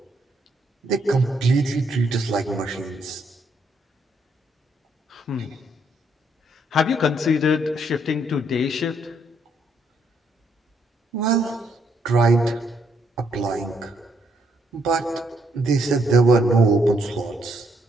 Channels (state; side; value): normal; both; correlation 0.73